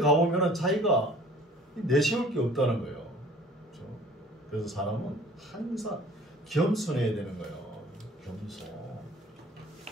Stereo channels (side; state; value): both; normal; correlation 0.50